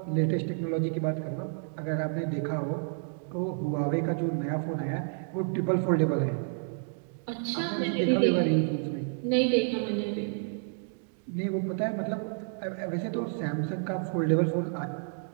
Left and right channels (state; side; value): silent; left; 58 dB below the other